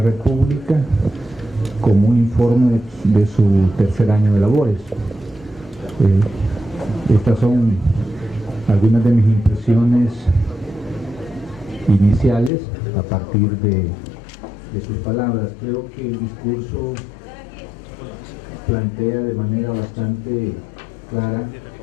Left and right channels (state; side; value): drops out; right; at 12.5 s